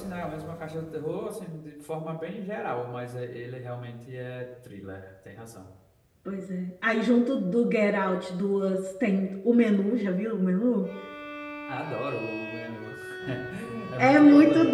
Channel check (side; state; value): both; identical; correlation 1.00